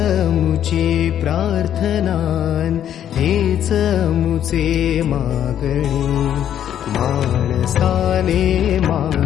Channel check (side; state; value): right; quieter; 10.2 dB